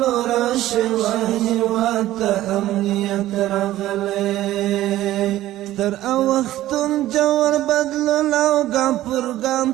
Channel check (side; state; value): left; quieter; 14.7 dB